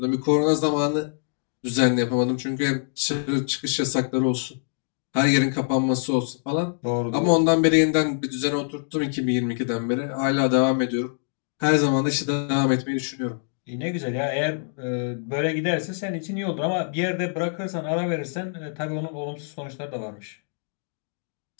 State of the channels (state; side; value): silent; right; digital silence